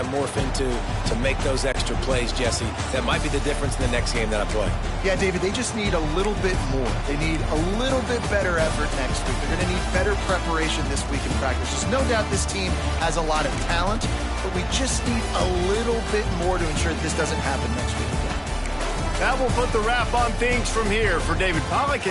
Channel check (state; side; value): identical; both; correlation 1.00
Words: morph into to make those extra plays, Jesse? That might be the difference in the next game that I play. Yeah, David, they just need a little bit more. They need a little bit better effort next week. They're going to need better preparation this week in practice. There's no doubt this team has a lot of talent, but we just need a little bit more to ensure that this doesn't happen next week again. That will put the wrap on things from here. For David Pollack